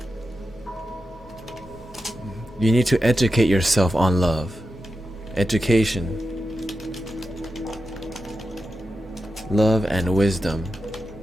You need to educate yourself on love. Education. Love and wisdom.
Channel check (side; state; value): both; normal; correlation 0.90